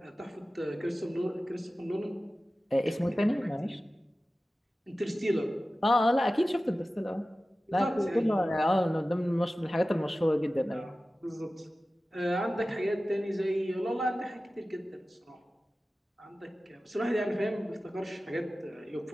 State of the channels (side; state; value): both; normal; correlation 0.96